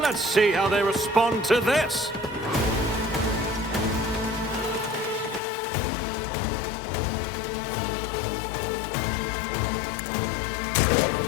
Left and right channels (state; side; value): drops out; right; at 5.4 s